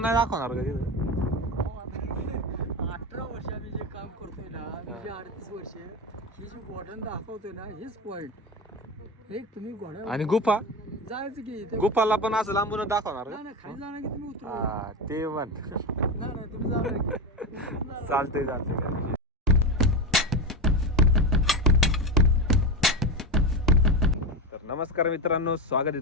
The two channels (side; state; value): both; normal; correlation 0.18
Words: नाही दाखवणार का तिथं 18 वर्ष आम्ही जे काम करतोय ना म्हणजे 38 वर्ष ही जी गोडन दाखवतोय ना हेच पॉइंट एक तुम्ही घोड्या आणि गुफा जायचं की इथे गुफाला पण असं लांबून दाखवणार नाही नाही, खाली जाणार की तुम्ही उतरू हा ते पण नाही नाही तुम्ही जाणार की चालतंय चालतंय. तर नमस्कार मित्रांनो, स्वागत